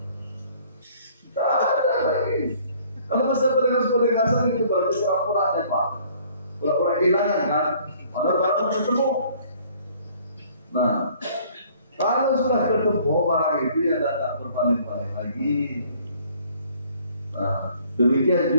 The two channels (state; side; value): inverted; both; correlation -0.57